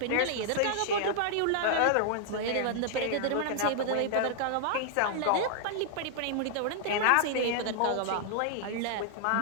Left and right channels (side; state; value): both; different; correlation -0.01